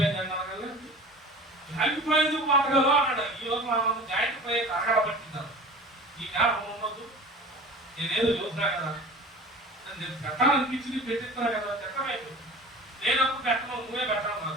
అన్నాను కదా, జాయింట్ ఫ్రై ఎందుకు పట్టగలవు అన్నాడు. ఈరోజు మనం జాయింట్ ఫ్రై అరగడ పట్టింటారు. ఈ జ్ఞాపకం ఉండదు. నేనేదో చూసినా కదా, నేను పెట్టాలనిపించింది, పెట్టిస్తున్నా కదా, పెట్టమైపోయింది. నేనప్పుడు పెట్టను, నువ్వే పెట్టాను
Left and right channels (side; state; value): both; normal; correlation 0.39